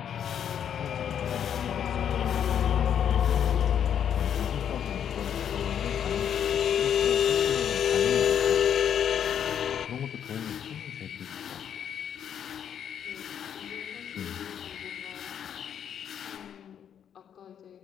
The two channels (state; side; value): quieter; right; 8.8 dB